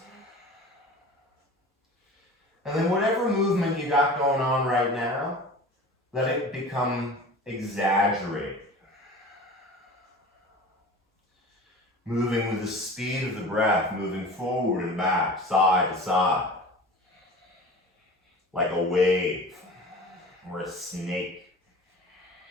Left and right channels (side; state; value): both; normal; correlation 0.38